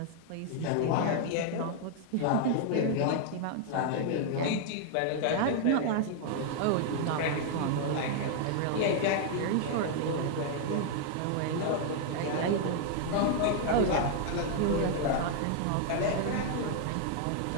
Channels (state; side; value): different; both; correlation 0.00